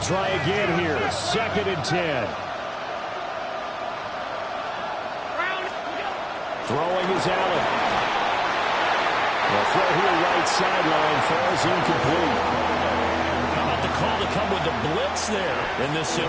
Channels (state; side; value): identical; both; correlation 1.00